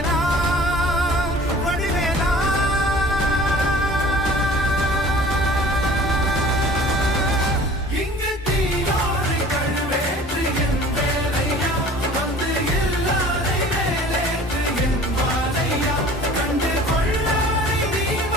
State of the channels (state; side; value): normal; both; correlation 0.46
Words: வடிவேனா இங்கு தீயோரை கழுவேற்று என் வேலையா வந்து எல்லாரை வேலேற்று என் வாழையா கண்டு கொள்ளாரை நீ